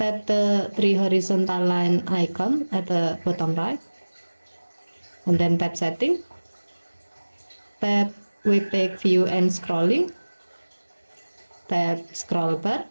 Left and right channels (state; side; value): inverted; both; correlation -1.00